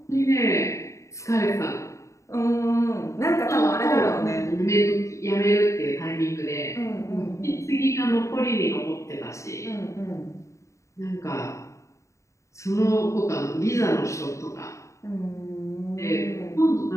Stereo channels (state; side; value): late; right; 0.14 ms